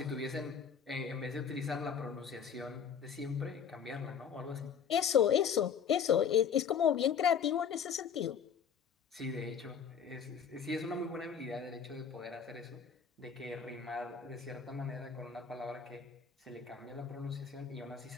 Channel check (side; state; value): right; quieter; 7.3 dB